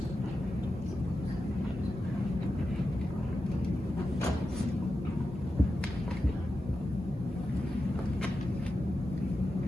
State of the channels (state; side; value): normal; both; correlation 0.91